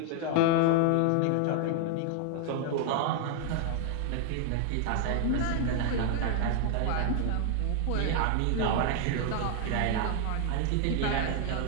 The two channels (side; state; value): both; different; correlation 0.00